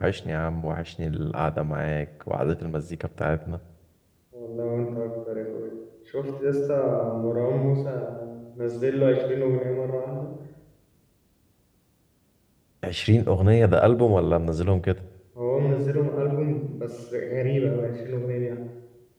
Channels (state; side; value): identical; both; correlation 1.00